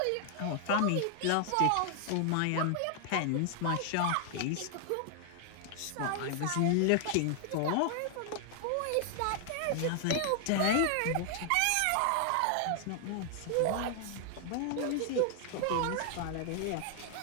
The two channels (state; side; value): different; both; correlation 0.00